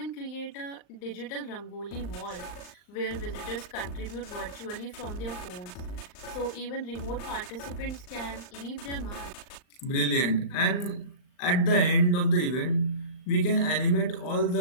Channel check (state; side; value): late; right; 39 ms